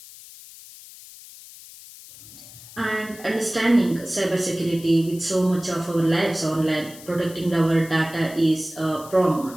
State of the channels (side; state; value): left; noise; hiss, 18 dB below the sound